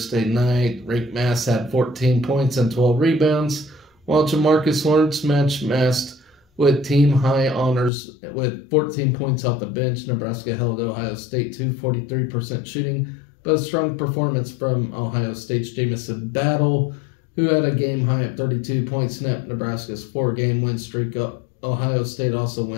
night. Rick Mass had 14 points and 12 rebounds, while Jamarcus Lawrence matched with team-high honors with 14 points off the bench. Nebraska held Ohio State to 43% shooting, but a strong performance from Ohio State's Jamison Battle, who had a game-high of 32 points, snapped Nebraska's 4-game win streak up. Ohio State also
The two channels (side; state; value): right; drops out; at 7.9 s